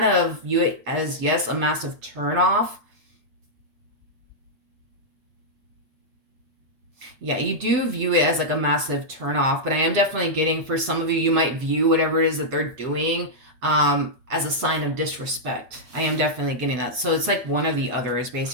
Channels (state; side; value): late; left; 7.9 ms